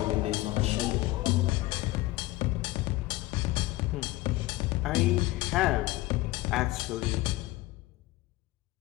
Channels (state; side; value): quieter; right; 18.8 dB